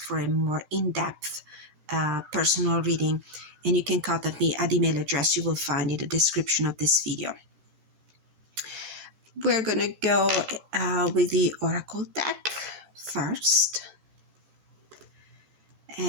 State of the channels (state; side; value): late; left; 13 ms